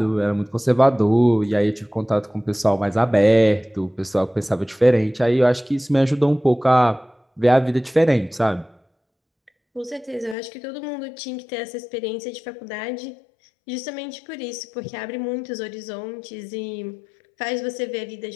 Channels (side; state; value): right; drops out; at 10.4 s